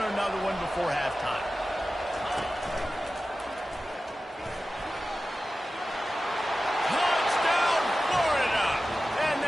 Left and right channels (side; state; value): both; normal; correlation 0.94